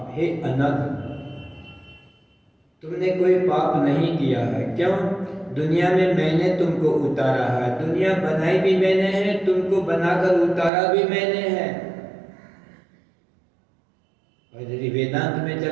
हे अनघ, तुमने कोई पाप नहीं किया है। क्यों? दुनिया में मैंने तुमको उतारा है, दुनिया बनाई भी मैंने है, तुमको बनाकर उतारा भी मैंने है। और यदि वेदांत में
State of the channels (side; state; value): left; drops out; at 10.7 s